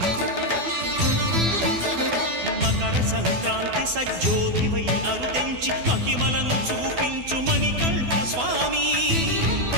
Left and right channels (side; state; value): left; late; 12 ms